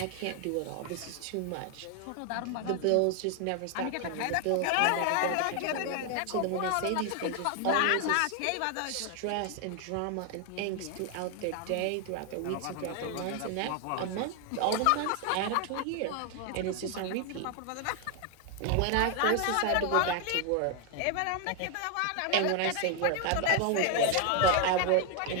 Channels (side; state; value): both; different; correlation 0.01